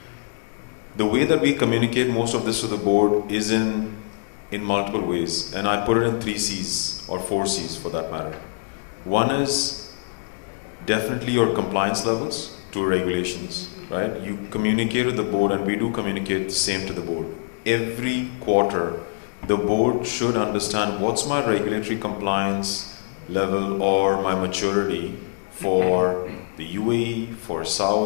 The way that we communicate most of this to the board is in multiple ways. And I put it in 3 C's or 4 C's for that matter. One is definitely your compliance levels to regulations. Right? You communicate with the board, and we do communicate the same to the board. Every quarter, the board should understand what's my regulatory compliance level or my maturity for the UAE, for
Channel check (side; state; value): right; silent; digital silence